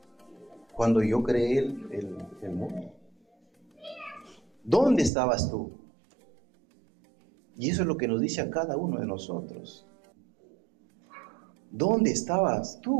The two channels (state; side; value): drops out; left; at 5.1 s